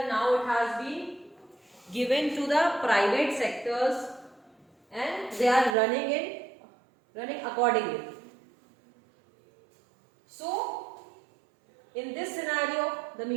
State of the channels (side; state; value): left; drops out; at 5.8 s